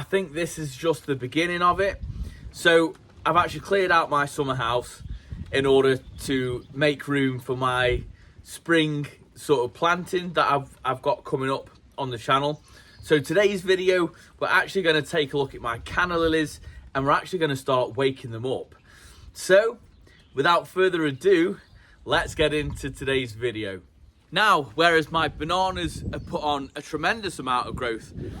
think this is just the beginning of it. So I've actually cleared out my summer house in order to make room for my spring sort of planting that I've got coming up on the channel. So today's video, we're actually going to take a look at my canna lilies and we're actually going to start waking them up. So without further ado, let's get into today's video. Now, whereas my bananas have put on a tremendous amount of growth,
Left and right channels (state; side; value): identical; both; correlation 1.00